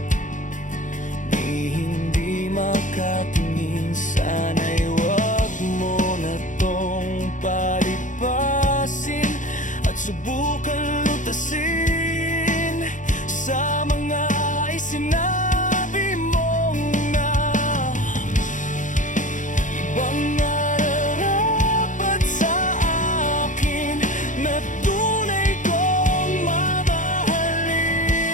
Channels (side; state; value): right; late; 0.37 ms